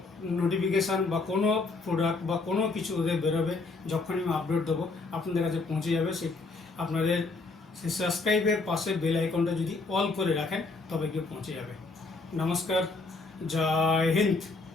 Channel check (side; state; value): right; quieter; 3.7 dB